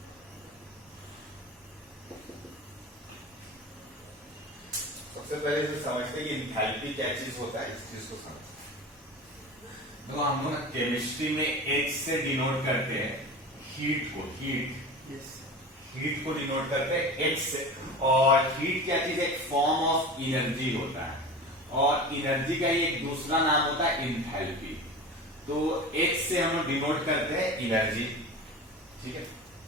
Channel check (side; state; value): both; normal; correlation 0.32